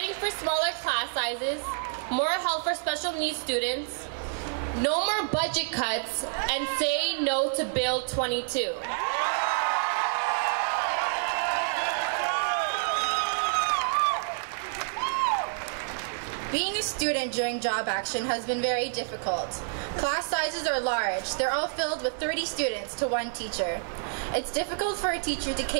for smaller class sizes, more help for special needs students, no more budget cuts, and say no to Bill 22. Being a student during job action has been very difficult. Class sizes are large. They're all filled with 30 students to one teacher. It's difficult for a teacher to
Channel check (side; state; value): left; silent; digital silence